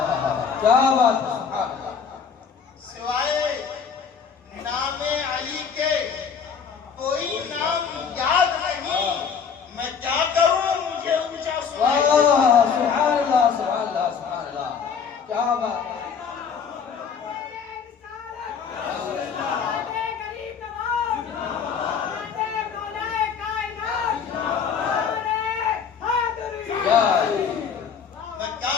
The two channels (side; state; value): right; quieter; 6.5 dB